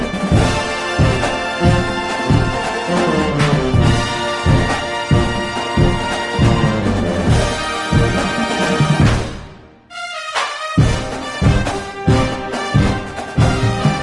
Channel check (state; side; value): identical; both; correlation 1.00